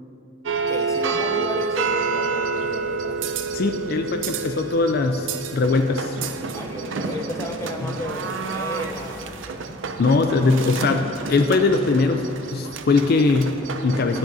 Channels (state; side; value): normal; both; correlation 0.40